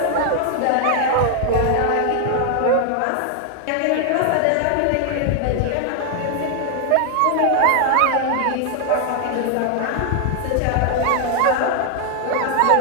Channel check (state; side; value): different; both; correlation 0.00